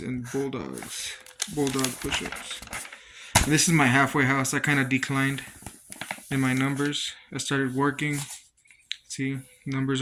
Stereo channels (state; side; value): identical; both; correlation 1.00